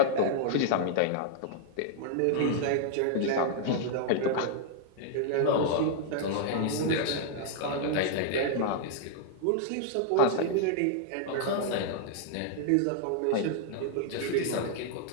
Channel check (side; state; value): both; different; correlation -0.01